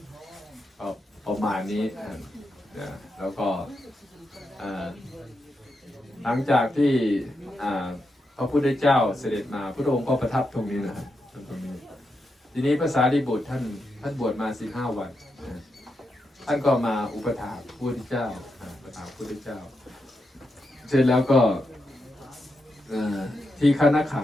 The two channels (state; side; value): normal; both; correlation 0.85